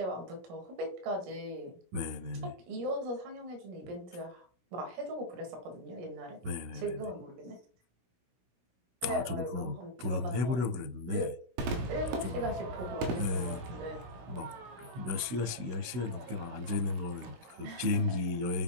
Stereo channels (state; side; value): late; left; 16 ms